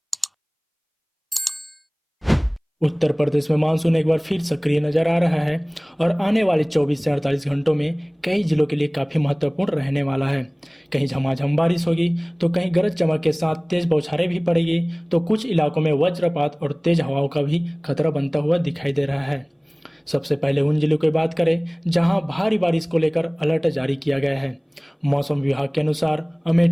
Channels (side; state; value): both; identical; correlation 1.00